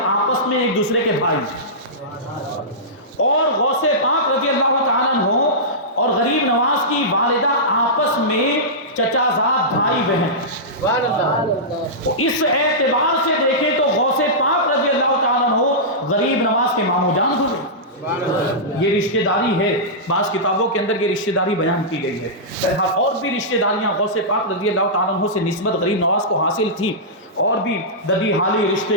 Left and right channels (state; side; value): normal; both; correlation -0.14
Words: آپس میں ایک دوسرے کے بھائی ہیں، اور غوث پاک رضی اللہ تعالیٰ عنہ اور غریب نواز کی والدہ آپس میں چچا زاد بھائی بہن. اس اعتبار سے دیکھیں تو غوث پاک رضی اللہ تعالیٰ عنہ غریب نواز کے ماموں جان ہوئے. یہ رشتہ داری ہے، بعض کتابوں کے اندر یہ رشتہ داری بیان کی گئی ہے. اور بھی رشتہ داریاں غوث پاک رضی اللہ تعالیٰ عنہ سے نسبت غریب نواز کو حاصل تھی، اور بھی ددی حالی